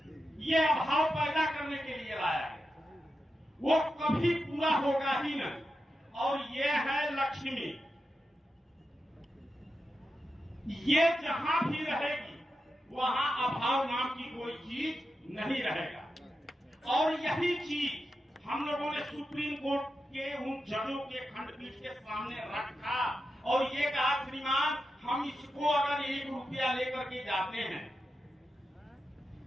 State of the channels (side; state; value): both; normal; correlation 0.89